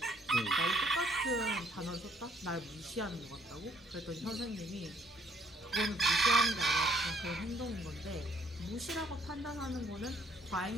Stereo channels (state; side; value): normal; both; correlation 0.65